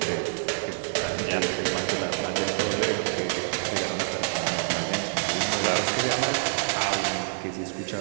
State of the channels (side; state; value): left; silent; digital silence